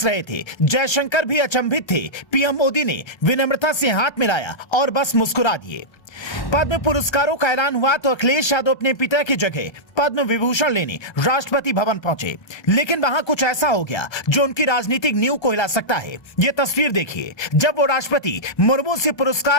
रहे थे, जयशंकर भी अचंभित थे। पीएम मोदी ने विनम्रता से हाथ मिलाया और बस मुस्कुरा दिए। पद्म पुरस्कारों का ऐलान हुआ तो अखिलेश यादव अपने पिता की जगह पद्म विभूषण लेने राष्ट्रपति भवन पहुंचे, लेकिन वहां कुछ ऐसा हो गया जो उनकी राजनीतिक नींव को हिला सकता है। ये तस्वीर देखिए, जब वो राष्ट्रपति मुर्मू से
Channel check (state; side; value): late; right; 1.3 ms